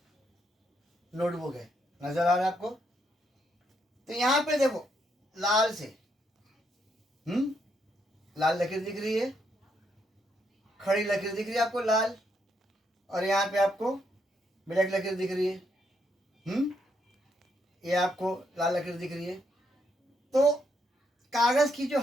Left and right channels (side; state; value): both; normal; correlation 0.76